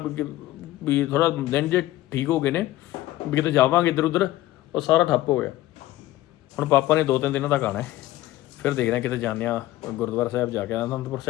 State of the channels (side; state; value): right; quieter; 15.9 dB